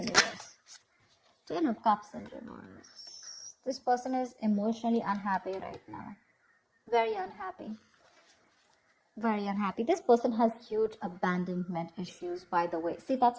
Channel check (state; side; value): identical; both; correlation 1.00